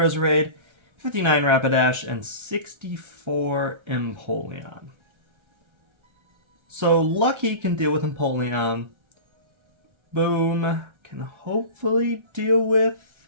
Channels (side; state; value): left; late; 1.3 ms